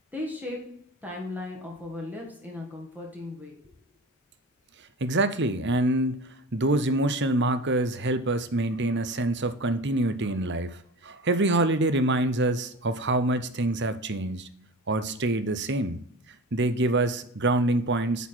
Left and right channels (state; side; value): normal; both; correlation 0.34